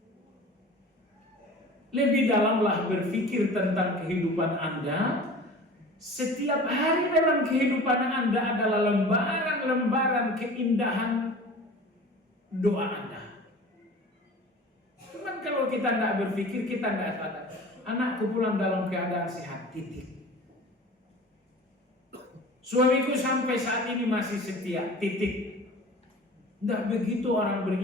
Lebih dalamlah berpikir tentang kehidupan Anda, Setiap hari dalam kehidupan Anda adalah lembaran-lembaran keindahan doa Anda. Cuman kalau kita tidak berpikir, kita tidak sadar. Anakku pulang dalam keadaan sehat, titik. Suamiku sampai saat ini masih setia, titik. Tidak begitu orang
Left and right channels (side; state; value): both; normal; correlation 0.40